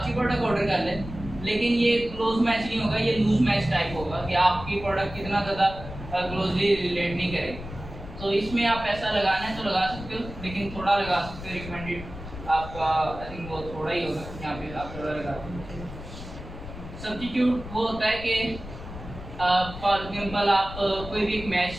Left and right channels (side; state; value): left; noise; rumble, 12 dB below the sound